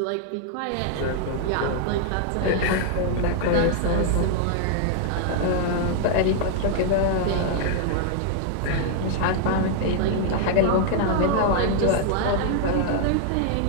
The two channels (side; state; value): both; different; correlation 0.00